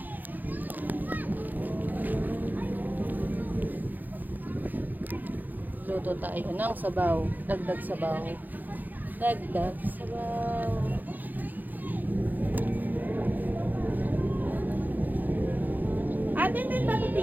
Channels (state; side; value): late; left; 0.085 ms